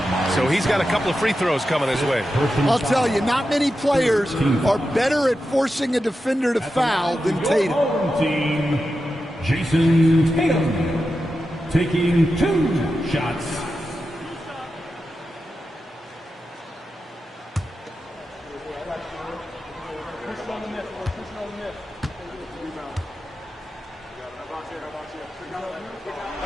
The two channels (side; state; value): both; normal; correlation 0.90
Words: so he's got a couple of free throws coming his way. I'll tell you, not many players are better at forcing a defender to foul than Tatum. Team, Jason Tatum, taking 2 shots.